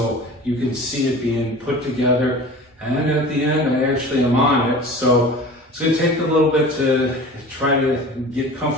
you can see it being put together. And then at the end, I actually am on it. So it's going to take a little bit to try to get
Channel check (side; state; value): both; normal; correlation 0.39